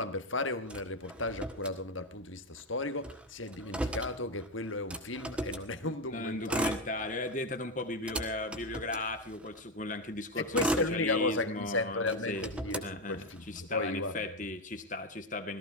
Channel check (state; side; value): normal; both; correlation 0.11